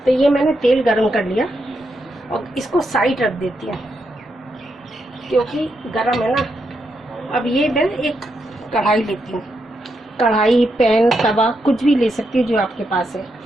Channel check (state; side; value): normal; both; correlation 0.82